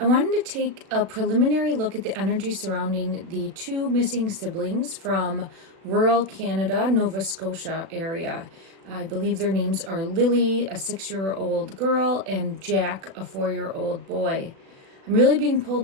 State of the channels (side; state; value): left; late; 36 ms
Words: wanted to take a preliminary look at the energy surrounding the two missing siblings from rural Canada, Nova Scotia area. I believe their names are Lily, a 6-year-old girl, and Jack, a 4-year-old boy. I'm really being